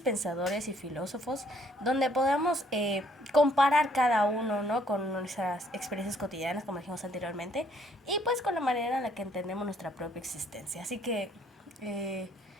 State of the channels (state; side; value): normal; both; correlation 0.65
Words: pensadores y filósofos, donde podamos comparar cada uno, ¿no? Con nuestras experiencias cotidianas, como dijimos anteriormente, y pues con la manera en la que entendemos nuestra propia existencia. Así que,